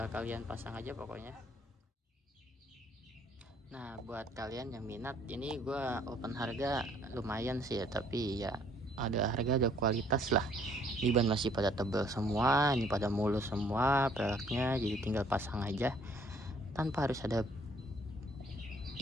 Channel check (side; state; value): both; normal; correlation 0.62